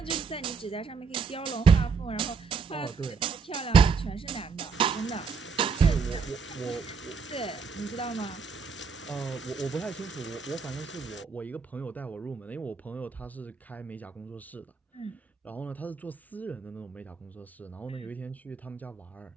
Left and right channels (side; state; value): left; quieter; 5.4 dB